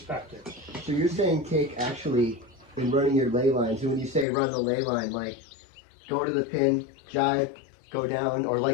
So you're saying, Cake, actually, in running your ley lines, and when you say run the ley line, like, go to the pin, jive, go down, or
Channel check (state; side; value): drops out; right; at 4.2 s